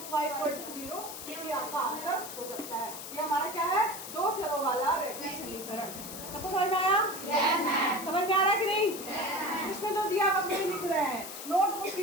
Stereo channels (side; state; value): left; noise; hiss, 10 dB below the sound